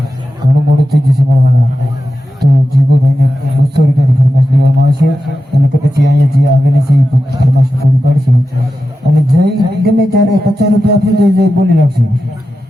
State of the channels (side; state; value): both; normal; correlation 0.91